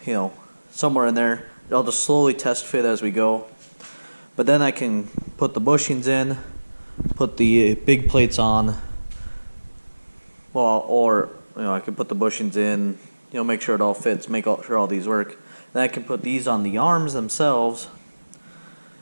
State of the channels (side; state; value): both; inverted; correlation -1.00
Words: somewhere in there. I'll just slowly test fit as we go, but then I can put the bushings in, put the big plates on, or I can put the bushings in, make sure it all fits, make sure all these work. Then I can put these on the arms themselves,